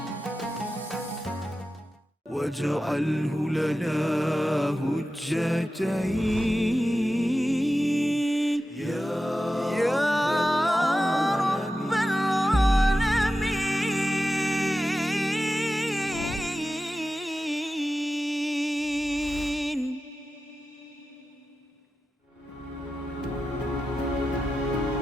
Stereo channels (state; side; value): normal; both; correlation 0.92